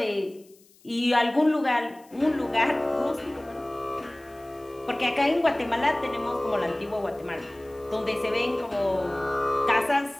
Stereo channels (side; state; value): left; noise; hiss, 29 dB below the sound